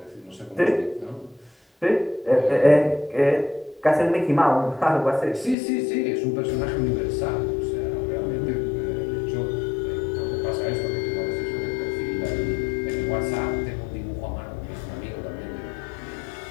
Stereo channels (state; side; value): drops out; right; at 5.6 s